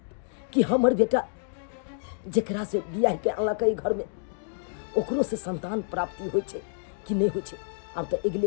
कि हमर बेटा जेकरा से बियाह के अनलकै घर में, ओकरो से संतान प्राप्ति होइ छे कि नहीं होइ छे। अब तो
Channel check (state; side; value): silent; right; digital silence